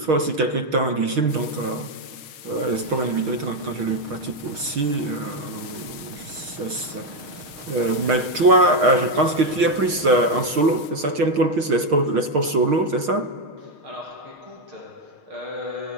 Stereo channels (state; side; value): late; left; 6.5 ms